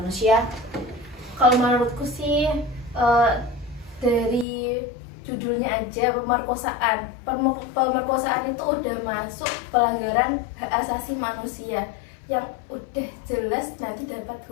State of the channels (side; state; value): right; drops out; at 4.5 s